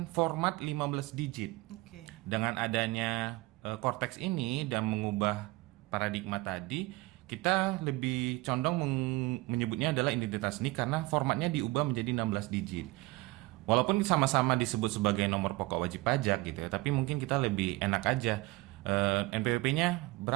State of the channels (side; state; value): left; quieter; 21.1 dB